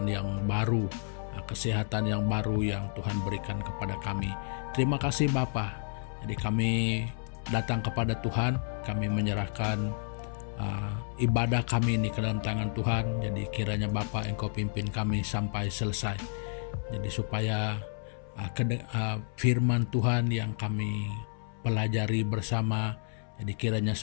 yang baru, kesehatan yang baru yang Tuhan berikan kepada kami. Terima kasih Bapa. Jadi kami datang kepada Tuhan, kami menyerahkan ibadah kami ini ke dalam tangan Tuhan. Jadi kiranya Bapa Engkau pimpin kami sampai selesai. Jadi supaya firman Tuhan yang kami pelajari bersama, jadi kiranya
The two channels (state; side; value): silent; right; 57 dB below the other